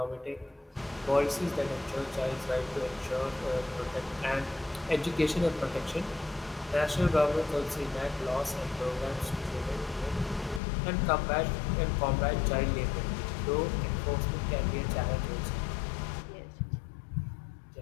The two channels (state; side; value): drops out; right; at 10.6 s